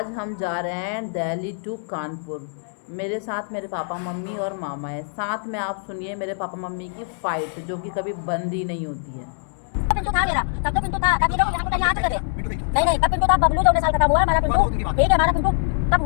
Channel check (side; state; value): right; silent; 63 dB below the other